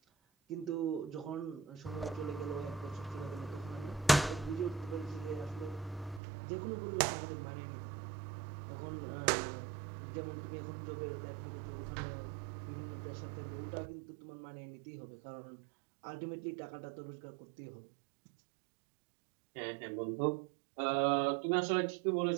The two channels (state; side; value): drops out; left; at 6.2 s